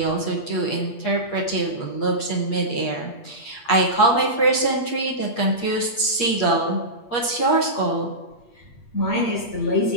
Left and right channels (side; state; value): right; late; 8.5 ms